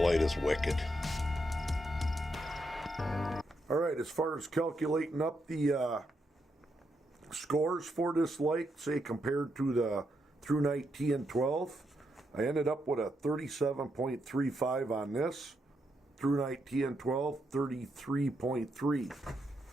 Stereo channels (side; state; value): both; normal; correlation 0.81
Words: light is wicked. Alright, as far as calculating up the scores for this light, say compared to the through night TN12, I ended up with a 37.35 on this. Through night TN12, 33.3.